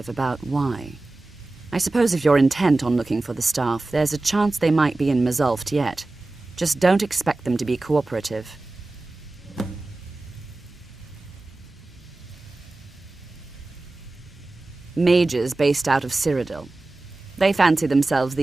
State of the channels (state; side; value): quieter; left; 3.1 dB